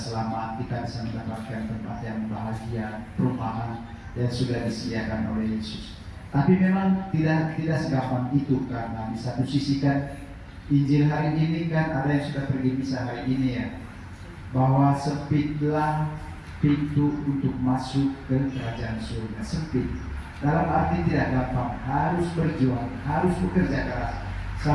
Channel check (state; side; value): identical; both; correlation 1.00